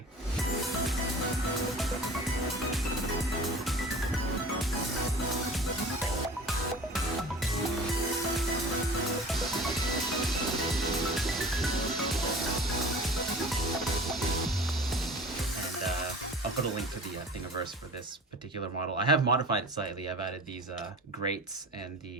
I'll put a link to the Thingiverse for this particular model. I have modified it slightly. I've added these grates, and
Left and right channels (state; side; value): normal; both; correlation 0.41